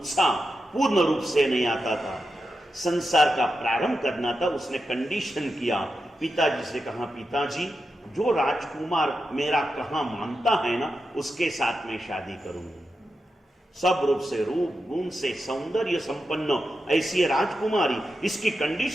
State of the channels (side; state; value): both; normal; correlation 0.88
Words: पूर्ण रूप से नहीं आता था। संसार का प्रारंभ करना था, उसने कंडीशन किया, पिताजी से कहा, पिताजी जो राजकुमार मेरा कहा मानता है ना, उसके साथ में शादी करूंगा। सब रूप से, रूप गुण से सौंदर्य संपन्न ऐसी राजकुमारी, इसकी